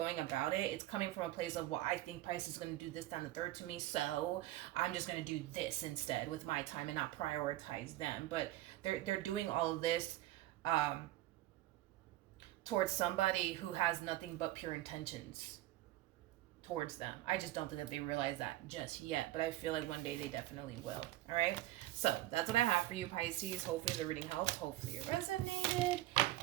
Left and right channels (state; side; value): quieter; left; 15.9 dB